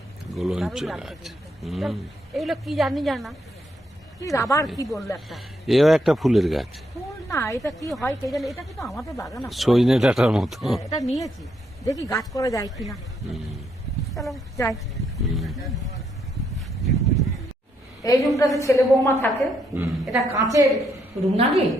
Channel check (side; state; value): both; normal; correlation 0.76